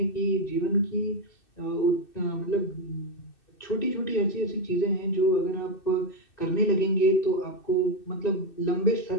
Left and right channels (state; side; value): late; right; 2.6 ms